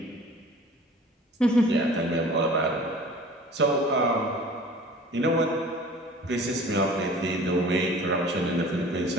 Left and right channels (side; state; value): both; normal; correlation 0.45